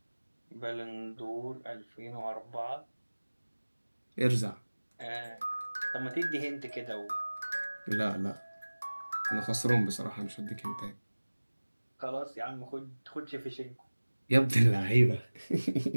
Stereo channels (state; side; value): inverted; both; correlation -1.00